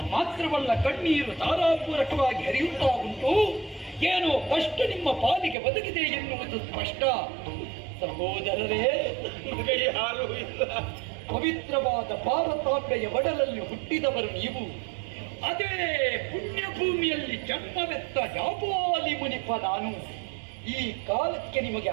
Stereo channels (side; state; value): left; drops out; at 5.6 s